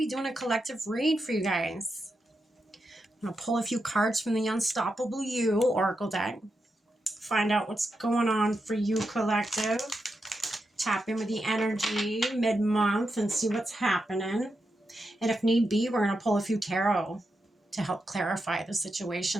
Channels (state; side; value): normal; both; correlation 0.87